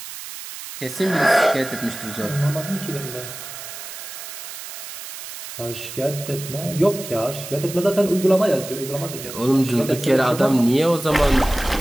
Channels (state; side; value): noise; right; hiss, 11 dB below the sound